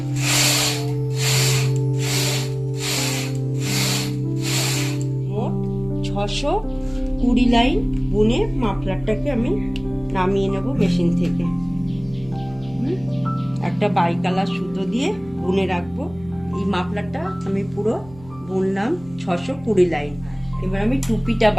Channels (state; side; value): noise; right; hum, 20 dB below the sound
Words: মোট 620 লাইন বুনে মাফলারটাকে আমি নামিয়ে নেব মেশিন থেকে। একটা বাইকালার সুতো দিয়ে বুনে রাখবো। এই মাফলারটা আমি পুরো বুনলাম 620 লাইন। এবার আমি টুপিটা